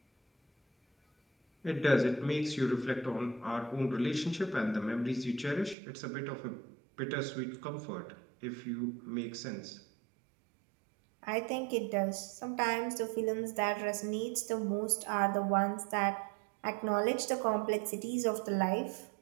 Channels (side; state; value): left; drops out; at 5.8 s